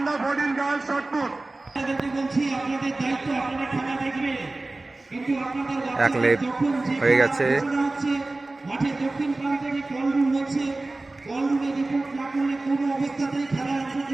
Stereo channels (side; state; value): left; quieter; 3.0 dB